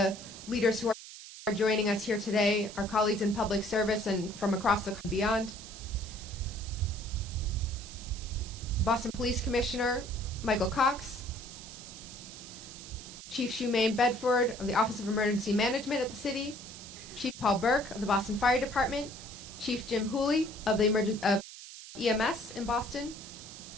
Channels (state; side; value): noise; right; hiss, 14 dB below the sound